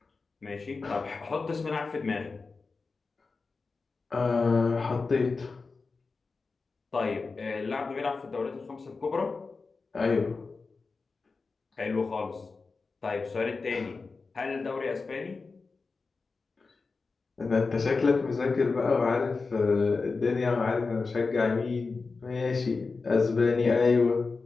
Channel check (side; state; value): right; quieter; 4.2 dB